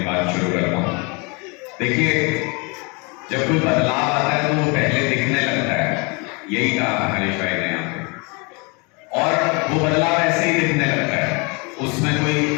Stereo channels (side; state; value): right; quieter; 30.6 dB